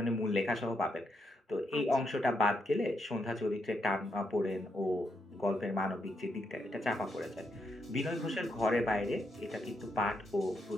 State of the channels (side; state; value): both; normal; correlation 0.80